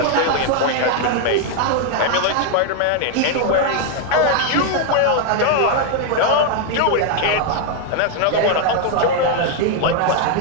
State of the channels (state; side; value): different; both; correlation 0.00